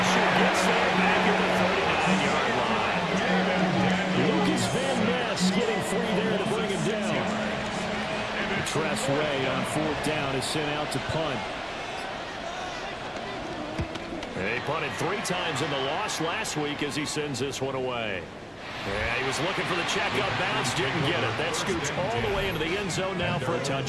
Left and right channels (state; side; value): identical; both; correlation 1.00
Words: gets there back at the 39-yard line. Lucas Van Ness getting free there to bring him down. Tress Way on 4th down is sent out to punt. They punted 3 times in the loss last week as he sends this one away. Yeah, he was looking for the checkup bounce, didn't get it. That scoots all the way into the end zone now for a